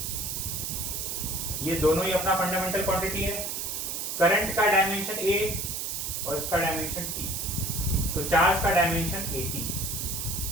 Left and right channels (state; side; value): noise; right; hiss, 3 dB below the sound